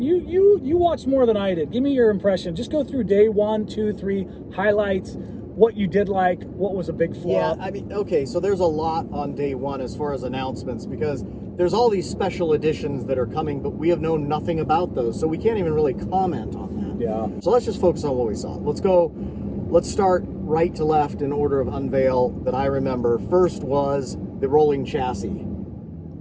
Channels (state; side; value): identical; both; correlation 1.00